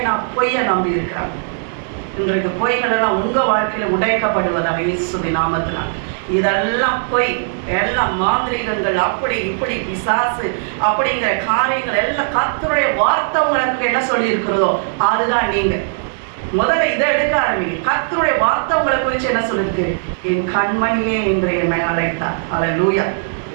பொய்யை நம்பி இருக்கிறாங்க. இன்றைக்கு பொய்களெல்லாம் உங்கள் வாழ்க்கையில் உடைக்கப்படுவதாக இயேசுவின் நாமத்தினால். இதெல்லாம் பொய், எல்லாம் மாந்திரீகங்கள், அப்படி இப்படி பிசாசு அப்படிங்கிற காரியங்கள் எல்லாம் கர்த்தருடைய வார்த்தை உங்களுக்கு என்ன சொல்லியிருக்கிறதோ அதுதான். நீங்கள் முதல்ல இதை எடுக்க ஆரம்பிங்க. கர்த்தருடைய வார்த்தை உங்களை குறித்து என்ன சொல்லிருக்கு? என் கண்மணியே என்று என்னை அழைத்தார். அல்லேலூயா.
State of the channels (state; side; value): silent; left; digital silence